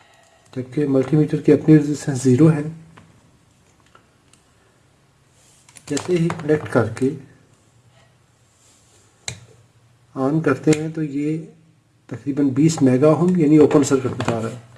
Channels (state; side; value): identical; both; correlation 1.00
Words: जबकि मल्टीमीटर की अपनी रेजिस्टेंस 0 है। जैसे ही कनेक्ट करके ऑन करते हैं तो ये तकरीबन 20 मेगा ओम यानी ओपन सर्किट बता रहा है।